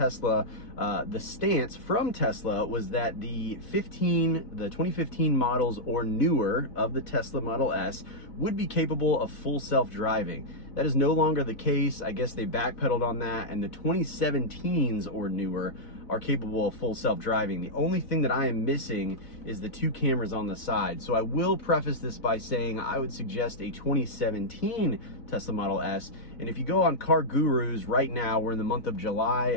the stance from Tesla was that the 2015 models or newer of the Tesla Model S would be capable of full self-driving. That is no longer the case. I guess they backpedaled on that, and the 2017s or newer are capable of full self-driving. The only thing that I am missing is the 2 cameras on the side. So I will preface this by saying I would suggest a 2017 Tesla Model S. And if you go on Car Gurus right now, we're in the month of July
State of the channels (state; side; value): late; right; 4.0 ms